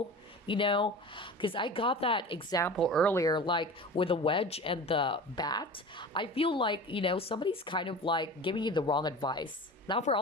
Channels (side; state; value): both; normal; correlation 0.35